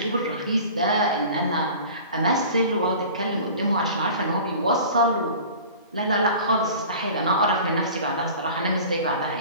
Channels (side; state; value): both; inverted; correlation -0.41